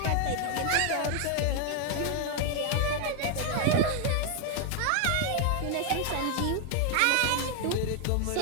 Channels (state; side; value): different; both; correlation 0.01